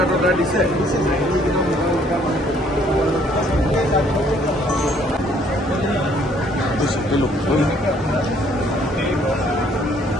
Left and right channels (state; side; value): normal; both; correlation 0.63